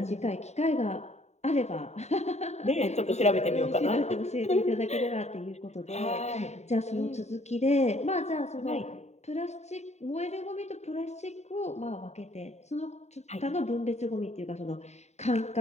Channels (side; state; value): right; late; 0.32 ms